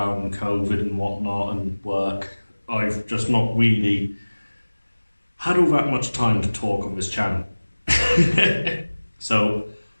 COVID and whatnot, and work. I've just not really had all that much time to talk on this channel. So,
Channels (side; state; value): both; inverted; correlation -1.00